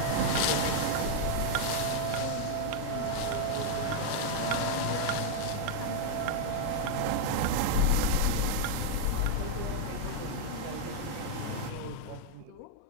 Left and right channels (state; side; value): different; both; correlation 0.00